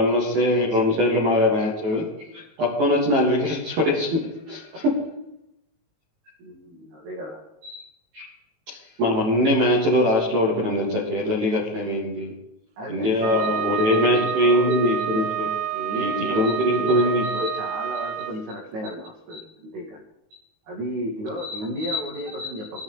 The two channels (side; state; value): left; late; 19 ms